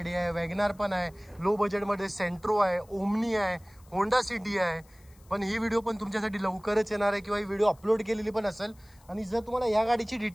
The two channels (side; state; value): left; noise; hiss, 29 dB below the sound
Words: आहे, वॅगनार पण आहे, लो बजेटमध्ये सेंट्रो आहे, ओमनी आहे, होंडा सिटी आहे. पण ही व्हिडिओ पण तुमच्यासाठी लवकरच येणार आहे किंवा ही व्हिडिओ अपलोड केलेली पण असेल. आणि जर तुम्हाला या गाडीची